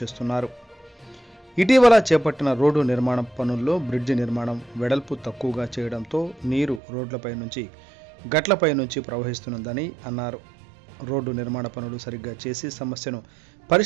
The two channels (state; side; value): drops out; left; at 6.8 s